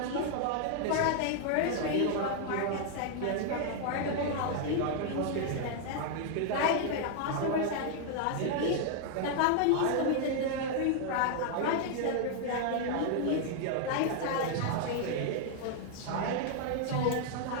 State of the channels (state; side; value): different; both; correlation 0.00